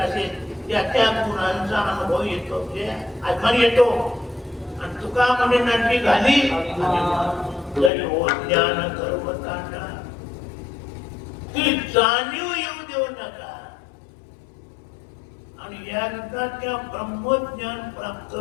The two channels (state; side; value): drops out; right; at 7.9 s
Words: असेल त्या त्या गुणांचा अनुभव येतो म्हणजे अभिमान येतो. आणि तुका म्हणे नाटली घाली जरी हो ज्ञान गर्वतांडा. ती जाणीव येऊ देऊ नका. आणि एकदा त्या ब्रह्मज्ञान प्राप्त